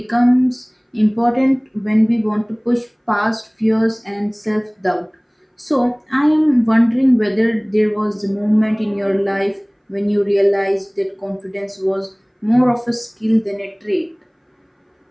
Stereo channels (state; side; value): identical; both; correlation 1.00